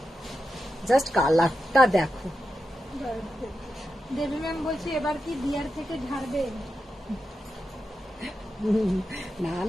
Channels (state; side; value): normal; both; correlation 0.88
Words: জাস্ট কালারটা দেখো, দেবী ম্যাম বলছি এবার কি দিয়ার থেকে ঝাড়বে? না